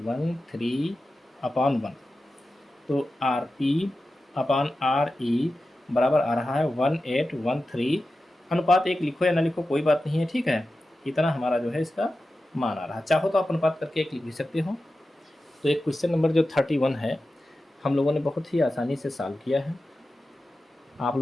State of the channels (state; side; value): normal; both; correlation 0.93